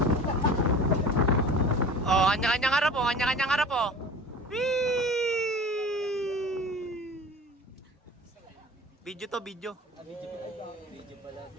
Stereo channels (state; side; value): normal; both; correlation 0.39